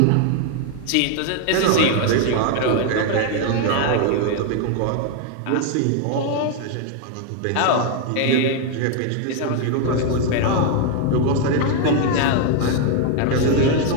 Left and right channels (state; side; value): different; both; correlation 0.01